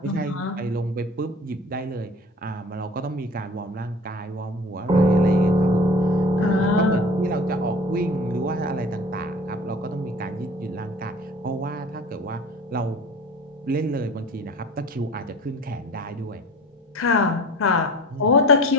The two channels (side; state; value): both; normal; correlation 0.43